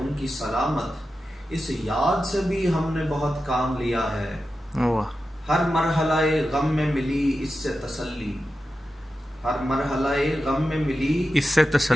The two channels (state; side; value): normal; both; correlation 0.91